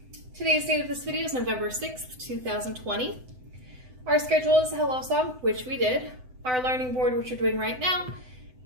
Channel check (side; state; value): left; late; 7.9 ms